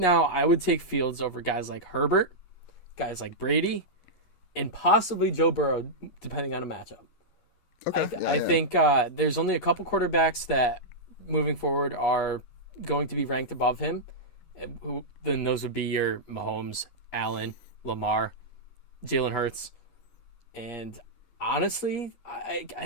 I would take Fields over guys like Herbert, guys like Brady, and possibly Joe Burrow, depending on a matchup. Okay. I think there's only a couple quarterbacks that, moving forward, are going to be ranked above him. Then those would be your Mahomes, Allen, Lamar, Jalen Hurts. And honestly,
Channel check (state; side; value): late; right; 11 ms